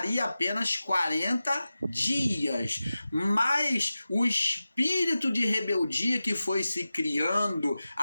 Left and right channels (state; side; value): inverted; both; correlation -0.94